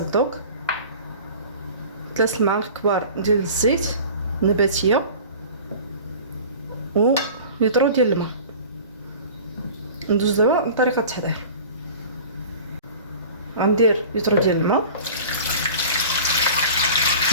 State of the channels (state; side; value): inverted; both; correlation -0.40